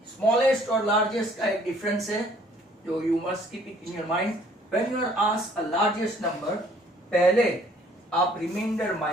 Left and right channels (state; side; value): normal; both; correlation 0.59